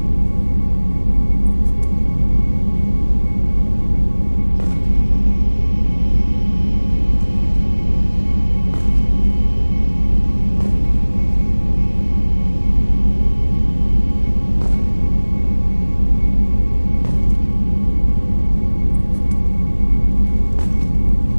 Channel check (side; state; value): both; inverted; correlation -1.00